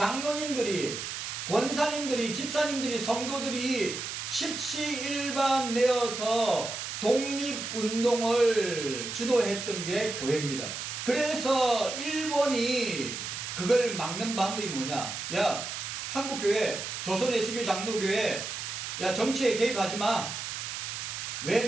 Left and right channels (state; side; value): noise; right; hiss, 6 dB below the sound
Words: 권사님들이, 집사님들이, 성도들이 십시일반 내어서 독립운동을 주도했던 게 교회입니다. 그래서 일본이 그걸 막는 방법이 뭐냐? 야, 한국교회, 조선예수교 장로교회, 야, 정치에 개입하지 마. 왜